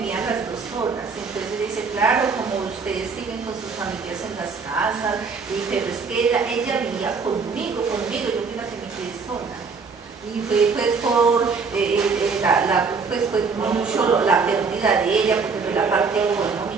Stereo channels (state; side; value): quieter; left; 4.9 dB